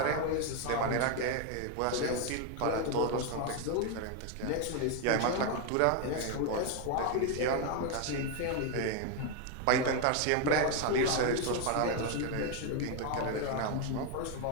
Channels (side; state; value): both; different; correlation 0.01